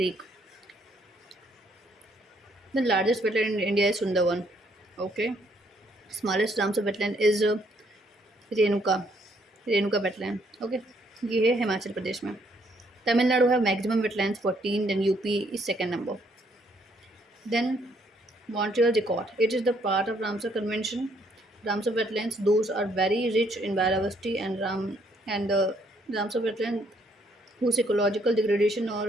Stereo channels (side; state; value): both; normal; correlation 0.69